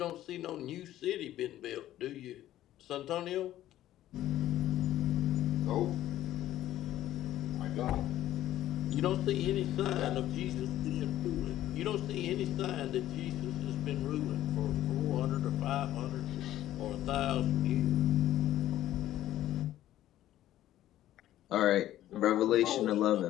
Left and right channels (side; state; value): right; quieter; 13.5 dB